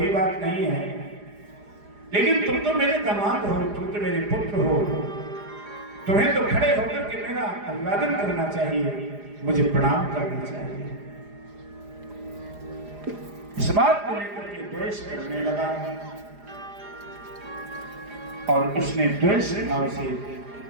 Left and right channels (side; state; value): left; late; 4.9 ms